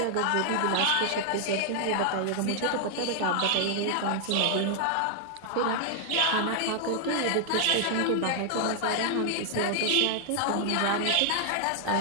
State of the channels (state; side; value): different; both; correlation 0.00